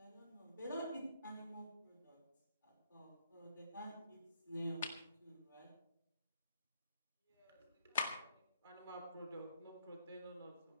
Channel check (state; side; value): inverted; both; correlation -0.70